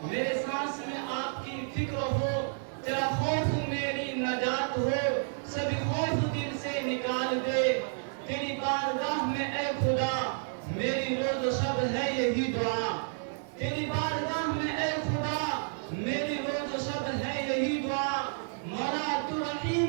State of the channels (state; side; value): silent; left; digital silence